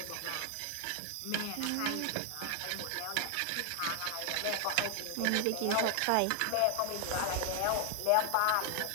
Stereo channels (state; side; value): different; both; correlation 0.00